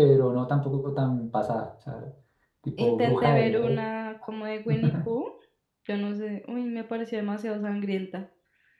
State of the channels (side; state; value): both; identical; correlation 1.00